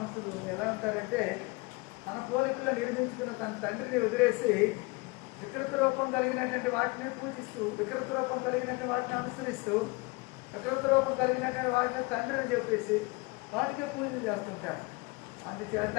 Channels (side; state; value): right; quieter; 25.5 dB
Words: ఎలా ఉంటారంటే, తన పోలికలో నిర్మించుకున్న తన తండ్రిని వదిలేసి వికృత రూపం కలిగినటువంటి వాటిని పూజిస్తూ, వికృత రూపం కలిగినటువంటి వాటిని అనుసరిస్తూ, వికృత రూపం కలిగినటువంటి వాటిని తండ్రిని చెప్పేసి వాటికే పూజలు చేస్తుంటారు. అందుచేత